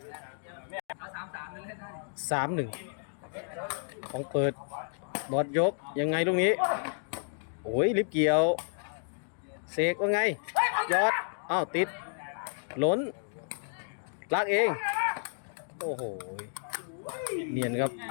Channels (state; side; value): silent; right; digital silence